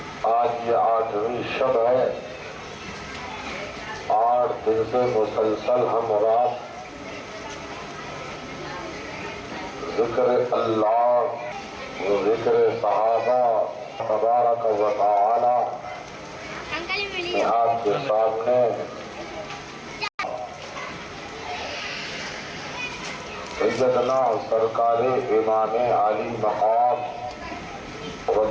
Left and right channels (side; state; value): both; identical; correlation 1.00